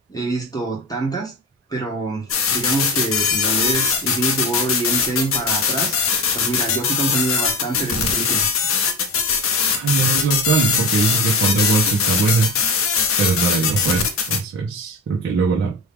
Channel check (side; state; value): both; normal; correlation 0.27